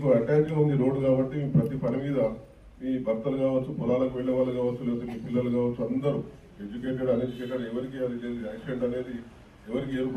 అటాచ్గా ఉంది రోడ్డు కాబట్టి మీ ప్రతి పని మీద మీ భర్తలు కావచ్చు, పొలాలకు వెళ్ళే వాళ్ళు కావచ్చు, లేకపోతే మీ పిల్లలు కావచ్చు, అందరూ ఎడ్యుకేటెడ్ అన్ఎడ్యుకేటెడ్ ఎవరికి అది లేదు. యాక్సిడెంట్ అనేది ఎవరికి ఏ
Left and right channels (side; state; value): both; identical; correlation 1.00